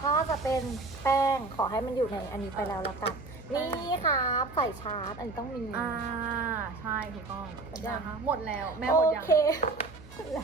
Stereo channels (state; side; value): quieter; left; 3.4 dB